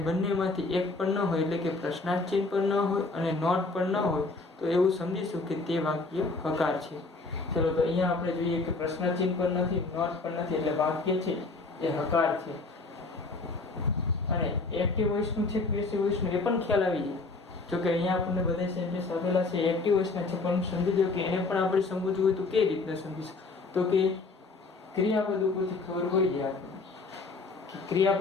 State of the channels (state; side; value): quieter; right; 3.7 dB